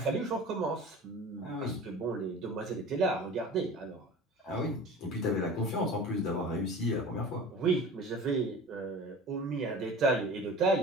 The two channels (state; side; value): normal; both; correlation 0.38